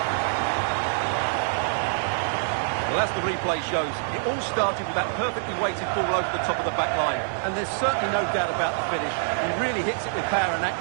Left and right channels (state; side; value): silent; left; 61 dB below the other